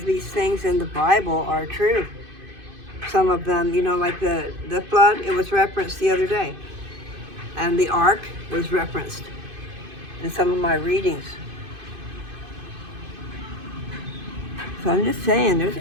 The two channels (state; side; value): late; left; 2.5 ms